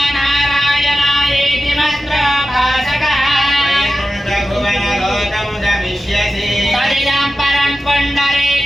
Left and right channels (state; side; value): normal; both; correlation 0.93